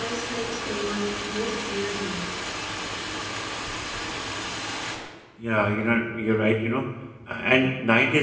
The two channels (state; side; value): identical; both; correlation 1.00